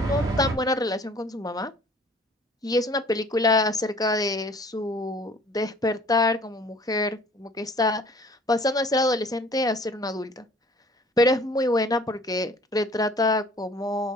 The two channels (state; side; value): normal; both; correlation 0.52